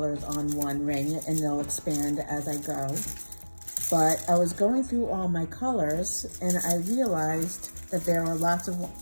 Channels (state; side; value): inverted; both; correlation -1.00